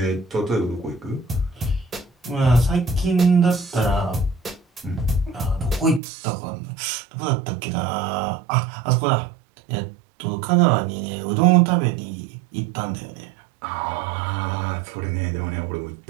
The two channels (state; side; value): drops out; left; at 6.0 s